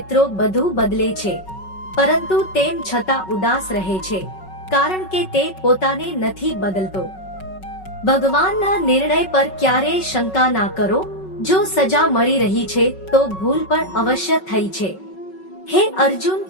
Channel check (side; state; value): right; late; 5.4 ms